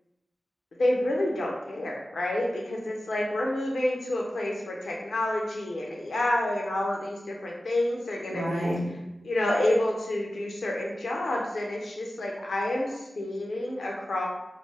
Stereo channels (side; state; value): both; normal; correlation 0.94